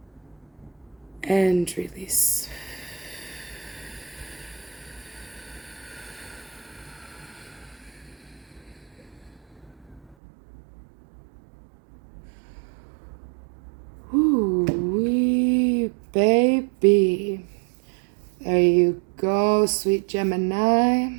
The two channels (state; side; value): drops out; left; at 10.2 s